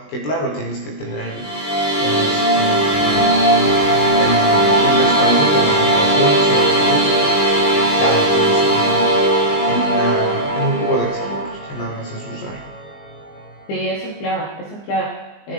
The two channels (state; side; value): late; right; 20 ms